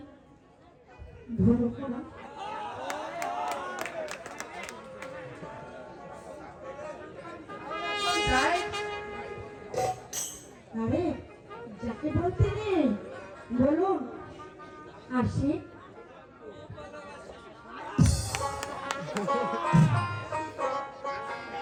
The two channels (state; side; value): identical; both; correlation 1.00